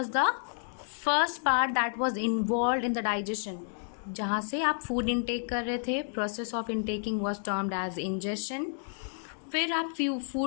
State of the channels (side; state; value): right; silent; digital silence